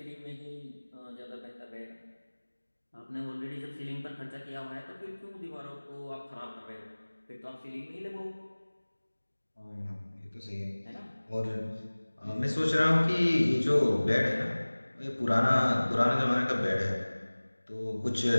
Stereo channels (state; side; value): inverted; both; correlation -1.00